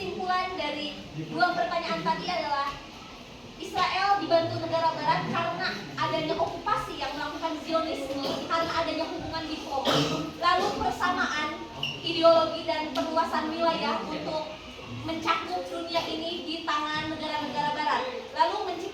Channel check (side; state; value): both; identical; correlation 1.00